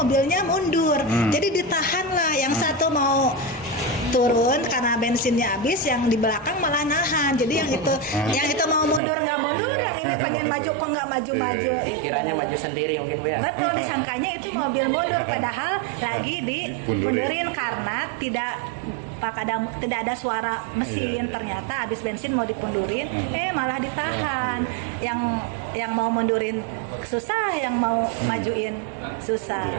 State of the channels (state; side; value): drops out; left; at 9.0 s